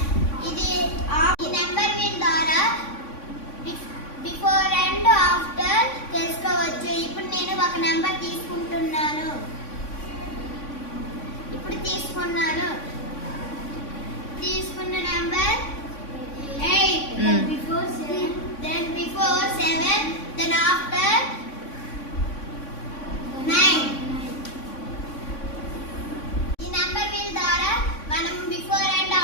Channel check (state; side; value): late; right; 3.5 ms